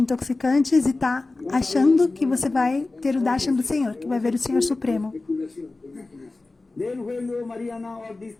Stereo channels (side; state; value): right; quieter; 3.3 dB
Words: e tá achando que você vai ter o darshan do Senhor, que vai ver o Senhor Supremo. especulación, te imaginas. then when your Mariana or these